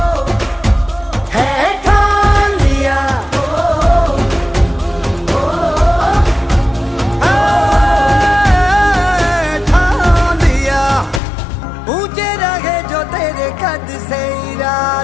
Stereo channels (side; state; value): right; drops out; at 11.2 s